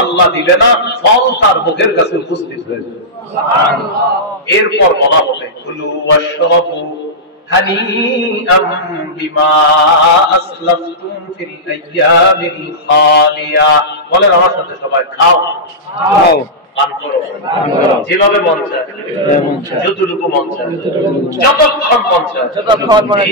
আল্লাহ দিবে না, ফল তার মুখের কাছে উপস্থিত হয়ে যাবে। সুবহানাল্লাহ। এরপর বলা হবে কুলু ওয়াশরাবু হানিআম বিমা আসলাফতুম ফিল আইয়ামিল খালিয়া। বলেন আমার সাথে সবাই, খাও খাও পান করো, যেভাবে মন চায়, যতটুকু মন চায়, যতক্ষণ মন চায়, যতক্ষণ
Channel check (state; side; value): normal; both; correlation -0.11